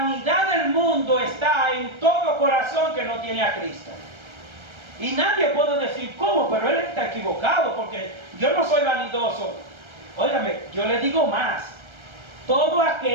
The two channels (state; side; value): late; left; 1.3 ms